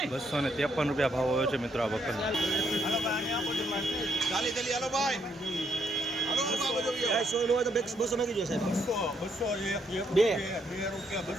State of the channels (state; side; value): normal; both; correlation 0.73